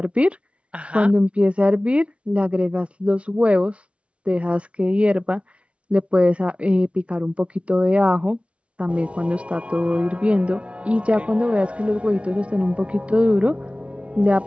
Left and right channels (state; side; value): late; left; 0.061 ms